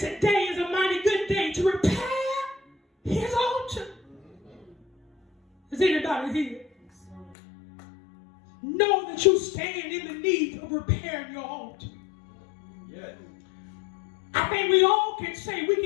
is a mighty good day to repair his altar. Is anybody here? Know that you stand in the need of repairing your altar. Yes. I think we all can say we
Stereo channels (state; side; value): drops out; right; at 7.4 s